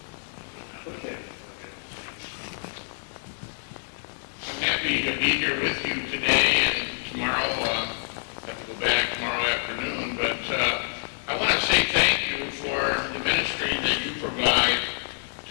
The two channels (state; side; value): silent; right; digital silence